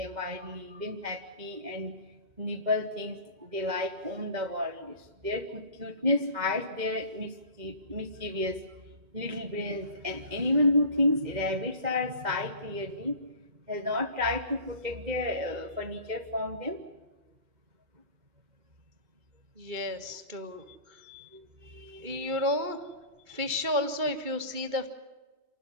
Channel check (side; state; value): left; late; 2.3 ms